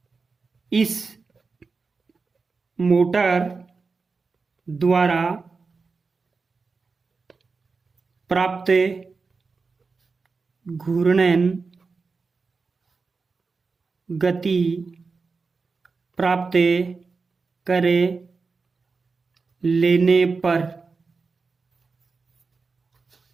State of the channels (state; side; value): quieter; left; 4.5 dB